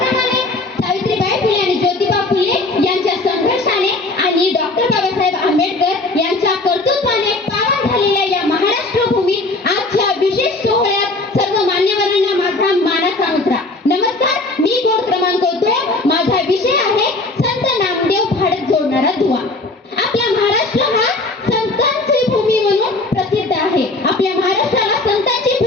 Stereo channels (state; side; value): quieter; right; 3.1 dB